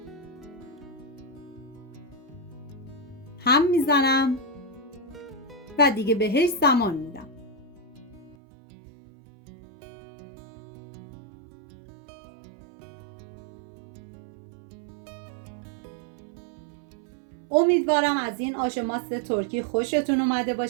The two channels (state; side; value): drops out; left; at 8.3 s